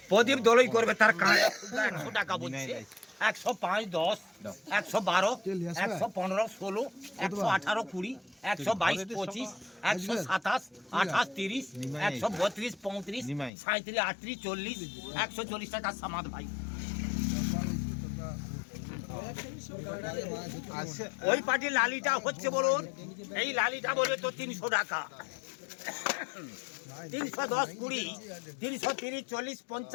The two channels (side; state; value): right; drops out; at 13.5 s